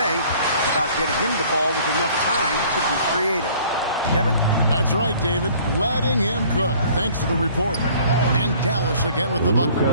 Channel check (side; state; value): both; inverted; correlation -0.54